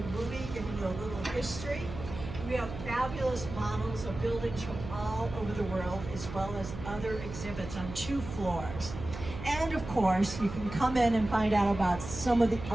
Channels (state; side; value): noise; right; hum, 10 dB below the sound